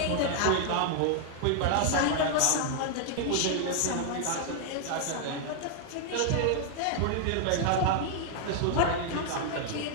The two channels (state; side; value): different; both; correlation 0.00